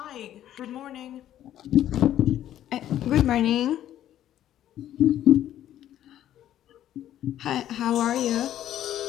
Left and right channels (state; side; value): quieter; right; 11.8 dB